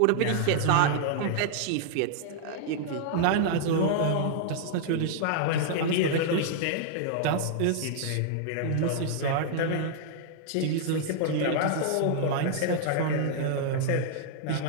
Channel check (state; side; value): different; both; correlation -0.01